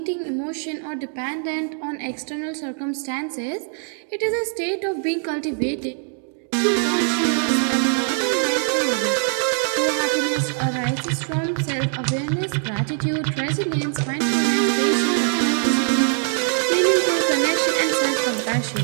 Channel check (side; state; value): left; silent; 56 dB below the other